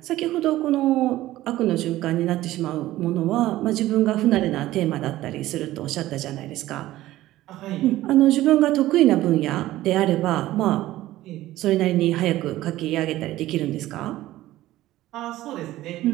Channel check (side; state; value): left; quieter; 15.6 dB